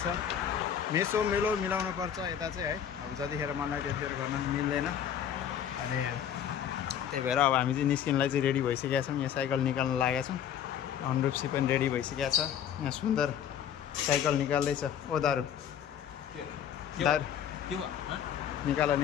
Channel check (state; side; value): quieter; right; 9.2 dB